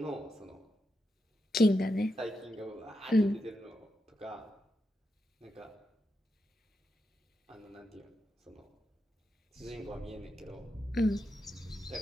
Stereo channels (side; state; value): both; normal; correlation 0.86